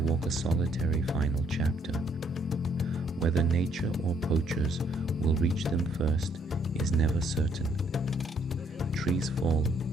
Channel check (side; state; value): both; normal; correlation 0.68